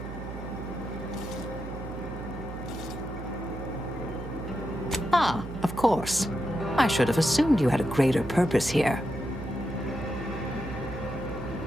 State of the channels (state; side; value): noise; right; hum, 10 dB below the sound